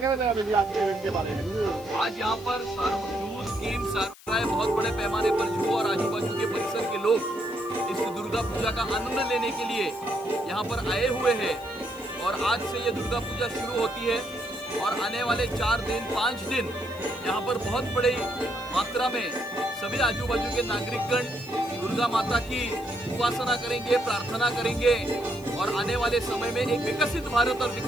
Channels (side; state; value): left; noise; hiss, 21 dB below the sound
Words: चाहेंगे आज के इवेंट के बारे में? आज यहाँ पर जूस गेम्स बहुत बड़े पैमाने पर जू और आजू बाजू के परिसर के लोग इस दुर्गा पूजा का आनंद लेने के लिए यहाँ पर आए हुए हैं। और आज से ये दुर्गा पूजा शुरू होती है और आने वाले 4 दिन 5 दिन यहाँ पर बहुत बड़ी मात्रा में सभी आजू बाजू के नागरिकगण दुर्गा माता की उपासना करेंगे, प्रार्थना करेंगे और आने वाले समय में एक विकसित भारत और